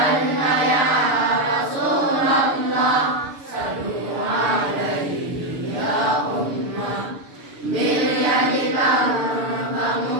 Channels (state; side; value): late; left; 6.8 ms